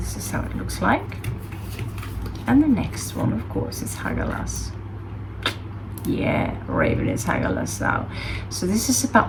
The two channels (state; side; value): identical; both; correlation 1.00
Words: is how it looks like. And the next one, of course, is Hagalas. Yeah, Raven is Hagalas now. So this is